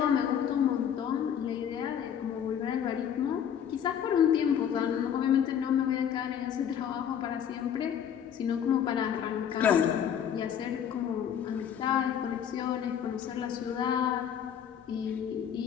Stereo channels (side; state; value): right; quieter; 8.8 dB